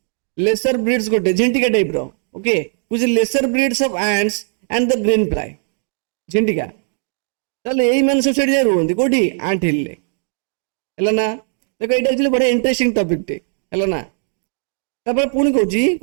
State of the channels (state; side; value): silent; left; 60 dB below the other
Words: ଲେସର ବ୍ରିଡ୍ସ ଗୋଟେ, ଝିଣ୍ଟିକା ଟାଇପ ର। Okay, which lesser breeds of ants and the green fly, ଝିଣ୍ଟିକା। ତାହେଲେ ଏଇ ମାନେ ସବୁ ସେଠି ଯାଇ ରୁହନ୍ତି, କୋଉଠି? ଆଣ୍ଟ ହିଲ୍ ରେ, ହେଲା ନା? ଦେଖ, ଏଇଟା ଆକ୍ଚୁଆଲି ବଢିଆ ଇଣ୍ଟରେଷ୍ଟିଂ ଟପିକ ଟେ, ହେଲା ନା? ତାପରେ ପୁଣି